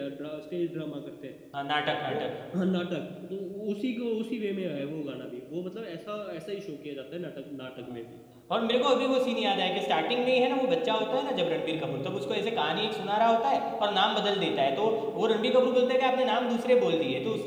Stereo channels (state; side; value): identical; both; correlation 1.00